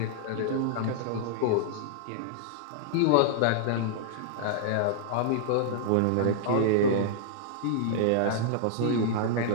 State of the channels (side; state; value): both; different; correlation -0.01